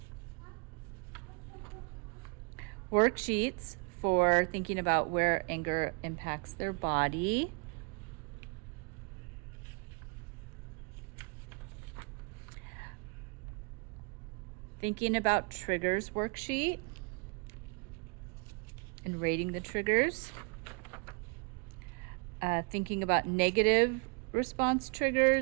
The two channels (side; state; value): left; quieter; 34.1 dB